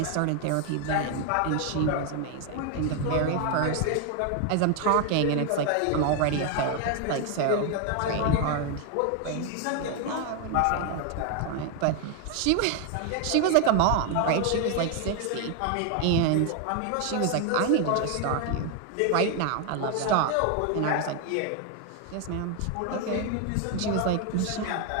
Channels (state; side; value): different; both; correlation 0.01